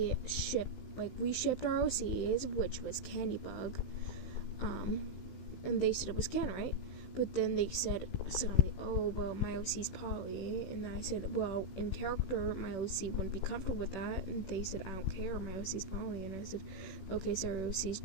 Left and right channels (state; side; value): late; right; 16 ms